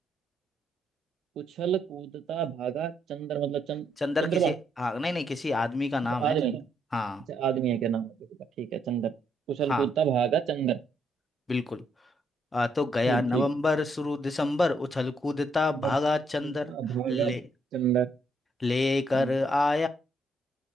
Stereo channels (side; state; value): both; normal; correlation 0.74